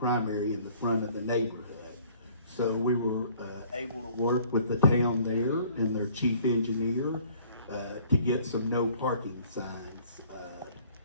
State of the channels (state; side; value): inverted; both; correlation -0.57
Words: in the front of the neighborhood. So we were able to work with the town there and their chief engineer to get some no parking signs